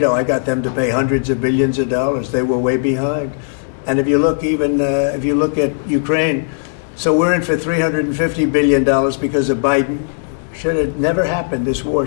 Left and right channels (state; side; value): silent; right; digital silence